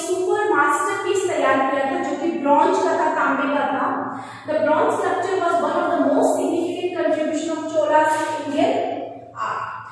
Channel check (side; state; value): both; identical; correlation 1.00